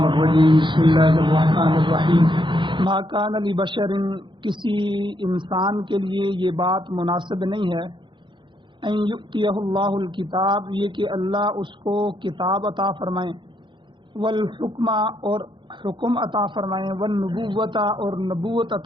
الرجيم بسم الله الرحمن الرحیم ما کان لبشر کسی انسان کے لیے یہ بات مناسب نہیں ہے ان یؤتیہ اللہ الکتاب یہ کہ اللہ اس کو کتاب عطا فرمائیں والحکم اور حکم عطا فرمائیں والنبوۃ اور نبوت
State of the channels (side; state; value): left; late; 0.23 ms